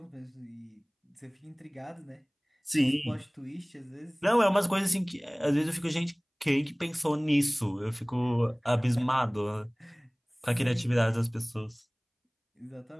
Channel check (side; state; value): both; identical; correlation 1.00